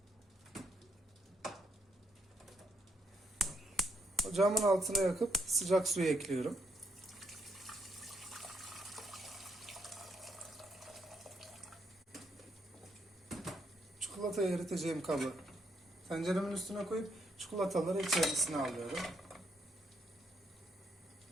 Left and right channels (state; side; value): normal; both; correlation 0.76